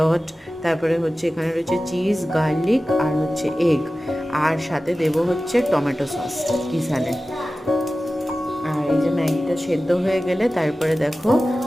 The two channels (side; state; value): both; normal; correlation 0.96